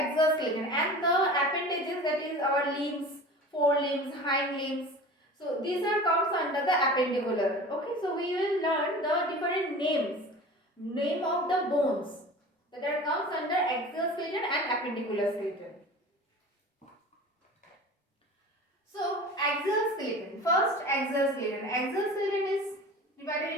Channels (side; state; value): both; normal; correlation 0.38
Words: skeleton, and the appendages, that is our limbs, forelimbs, hind limbs. So these are comes under the appendicular. Okay, so we will learn the different name of the bones that are comes under axial skeleton and appendicular skeleton. So axial skeleton. First, axial skeleton. Axial skeleton is divided